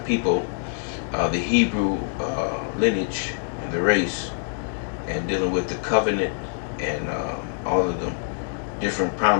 people, the Hebrew lineage and the race, and dealing with the covenant and all of the different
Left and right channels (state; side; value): silent; right; digital silence